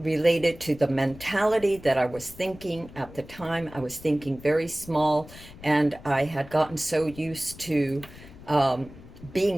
to the mentality that I was thinking at the time. I was thinking very small, and I had gotten so used to um,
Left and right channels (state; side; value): noise; left; rumble, 18 dB below the sound